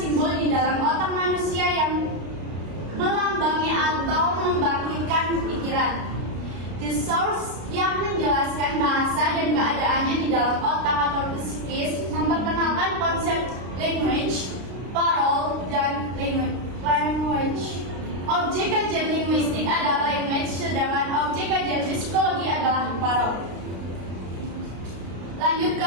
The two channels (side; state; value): left; late; 33 ms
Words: di dalam otak manusia yang melambangi atau membangkitkan pikiran. The Source yang menjelaskan bahasa dan keadaannya di dalam otak atau psikis memperkenalkan konsep language, parole, dan language. Objek kajian linguistik adalah language, sedangkan objek kajian psikologi adalah parole. Lanjut